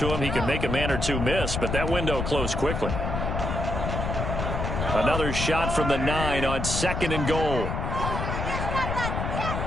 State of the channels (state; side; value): noise; left; rumble, 2 dB below the sound